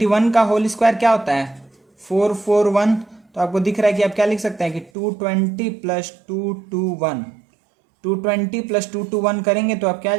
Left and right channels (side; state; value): left; drops out; at 4.9 s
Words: का होल स्क्वायर क्या होता है 441, तो आपको दिख रहा है कि आप क्या लिख सकते हैं कि 220 प्लस 221, 220 प्लस 221 करेंगे तो आप क्या आ